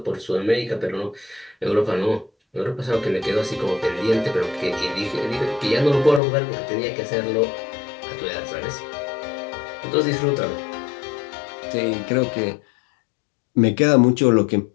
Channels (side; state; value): right; drops out; at 6.2 s